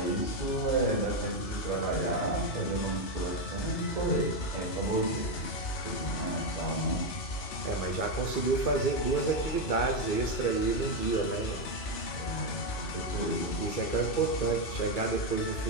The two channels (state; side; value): late; right; 3.4 ms